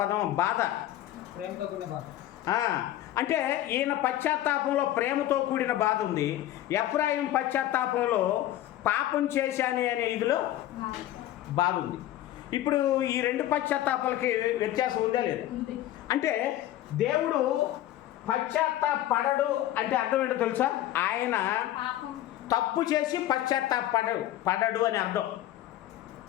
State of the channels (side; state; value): right; quieter; 13.6 dB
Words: పదం బాధ. అంటే ఈయన పశ్చాత్తాపంలో ప్రేమతో కూడిన బాధ ఉంది. ఎఫ్రాయిం పశ్చాత్తాపంలో పాపం చేశాను అనే ఇదిలో బాధ ఉంది. ఇప్పుడు ఈ రెండు పశ్చాత్తాపాలకి వ్యత్యాసం ఉందా లేదా? అంటే దేవుడు పశ్చాత్తాపడడు అంటే అర్థం ఏంటో తెలుసా? ఆయన తప్పు చేసి పడడు అని అర్థం.